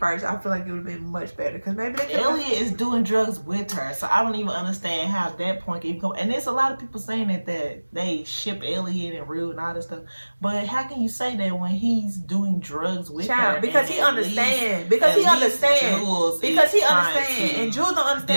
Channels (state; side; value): inverted; both; correlation -1.00